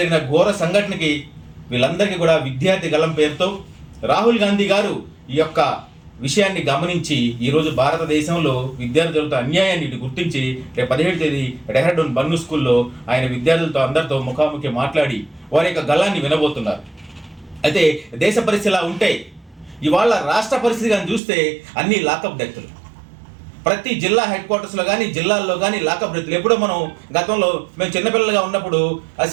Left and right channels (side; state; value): left; drops out; at 21.2 s